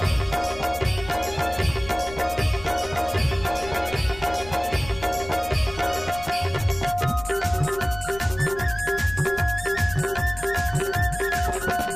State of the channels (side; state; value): left; noise; rumble, 15 dB below the sound